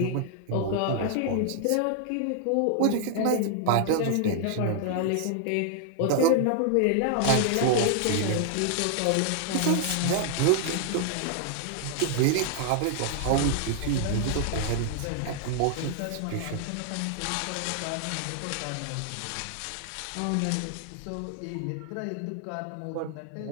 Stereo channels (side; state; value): both; different; correlation 0.00